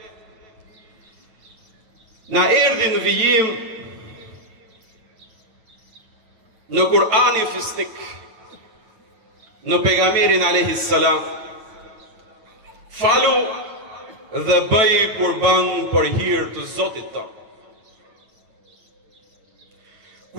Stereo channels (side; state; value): left; late; 9.2 ms